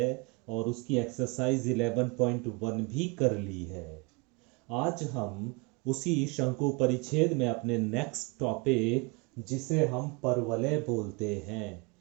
और उसकी एक्सरसाइज 11.1 भी कर ली है। आज हम उसी शंकु परिच्छेद में अपने नेक्स्ट टॉपिक, जिसे हम परवलय बोलते हैं,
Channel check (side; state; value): left; quieter; 28.7 dB